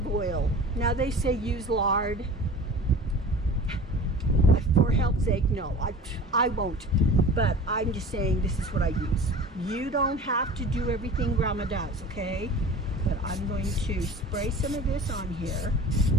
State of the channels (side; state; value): both; normal; correlation 0.40